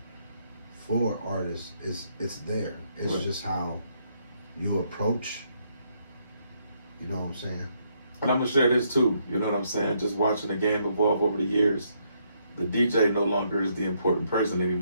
for artists it's there. It's right. Just how you approach. You know what I'm saying? And I'm gonna share this too. You know what I'm saying? Just watching the game evolve over the years, the DJ no longer is the important person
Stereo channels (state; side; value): inverted; both; correlation -0.74